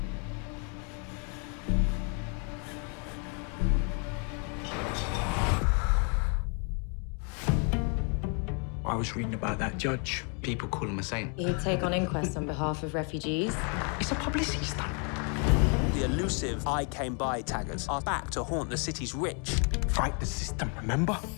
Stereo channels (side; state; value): right; quieter; 38.2 dB